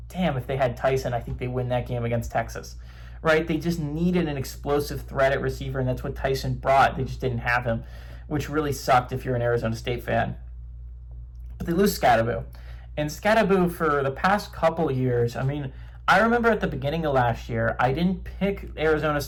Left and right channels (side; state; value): both; identical; correlation 1.00